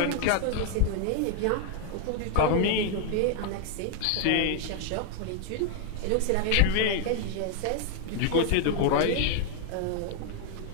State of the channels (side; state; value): both; different; correlation 0.00